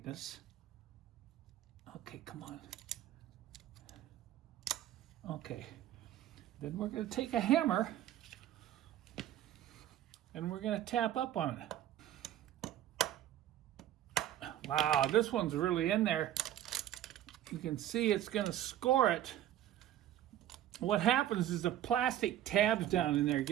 Okay, come on. Okay. Then we're going to take a hammer and we're going to tap up on it. Wow, this one's really in there. You can see it's going to score it. What happens is the plastic tabs down in there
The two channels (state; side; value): quieter; left; 12.0 dB